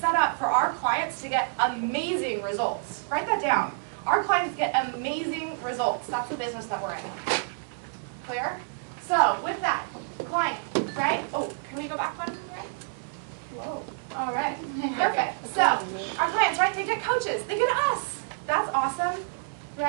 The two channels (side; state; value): left; silent; digital silence